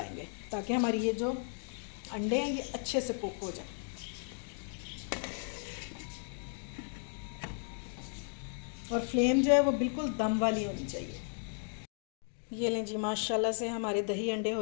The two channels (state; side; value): silent; right; 54 dB below the other